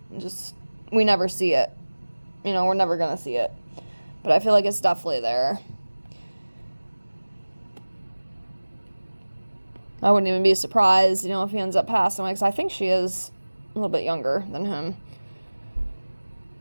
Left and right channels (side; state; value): both; inverted; correlation -1.00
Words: We never see it. You know, we're never going to see it. But I feel like it's definitely there. I wouldn't even be surprised, you know, if he ends up passing away, because I think she is a little bit younger than him.